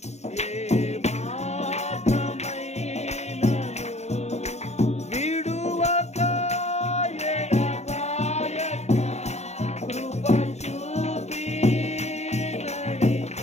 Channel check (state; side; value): late; right; 0.32 ms